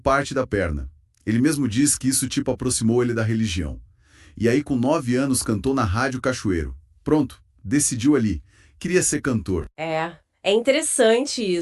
da perna. Ele mesmo diz que isso tipo aproximou ele da religião. E aí, com 9 anos, cantou na Rádio Cachoeiro. Pronto, decidiu ali. Queria ser cantor. É interessante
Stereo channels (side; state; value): both; identical; correlation 1.00